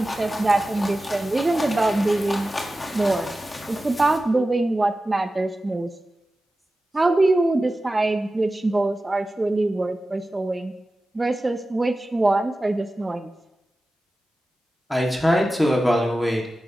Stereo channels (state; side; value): normal; both; correlation 0.95